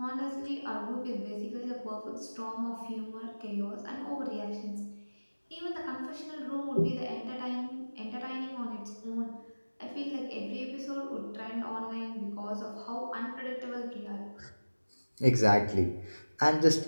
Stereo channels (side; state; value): both; inverted; correlation -1.00